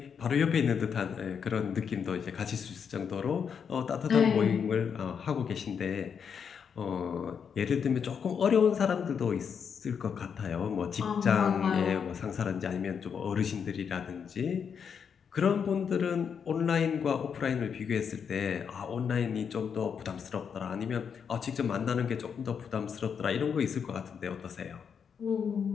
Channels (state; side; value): quieter; right; 7.0 dB